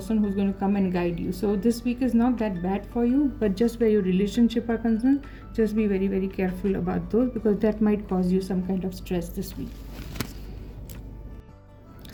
who's going to come and guide you. So this week is not that bad for you, but just where your relationship are concerned, just be very, very careful about those, because that might cause you some kind of stress this week.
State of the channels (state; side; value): identical; both; correlation 1.00